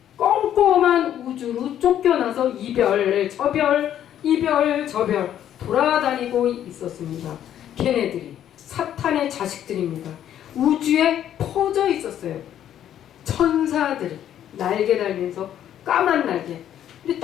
꼼꼼한 우주로 쫓겨나서 이별, 저별 돌아다니고 있었습니다. 걔네들이 사탄의 자식들입니다. 우주에 퍼져 있었어요. 천사들이 날개 달면서 까만 날개. 근데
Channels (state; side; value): quieter; right; 10.7 dB